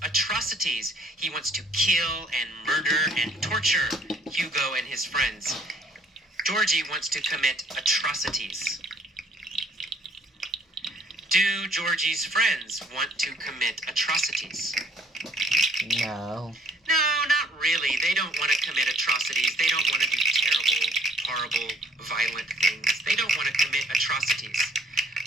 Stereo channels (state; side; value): normal; both; correlation 0.61